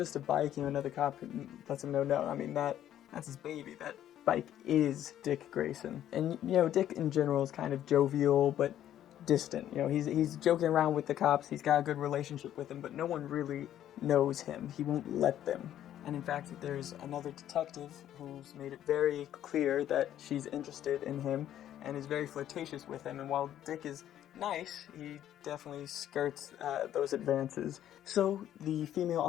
a bike. Another cop lets him know, no, I mean, that's his baby. That bike is Dick Grayson. And, Dick in general is kind of jovial, but distant. He's joking around with the cops. He's got a good relationship with them, but no one really knows him. He won't let them. And in fact, there's another detective who's made it very clear that she's interested in him and is very flirtatious with him. And while Dick is nice, he definitely skirts those advances. So the female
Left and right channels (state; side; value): quieter; right; 11.5 dB